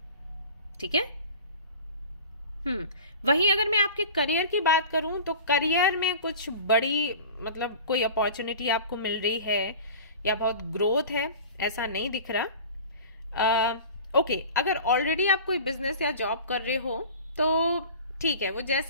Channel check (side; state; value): both; inverted; correlation -0.39